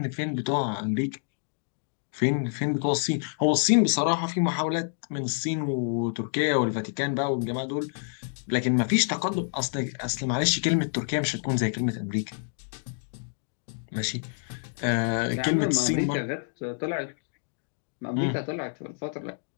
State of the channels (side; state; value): right; silent; digital silence